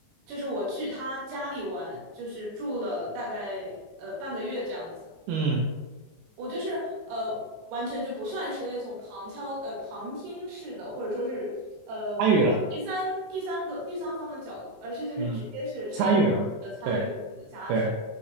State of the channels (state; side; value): late; left; 19 ms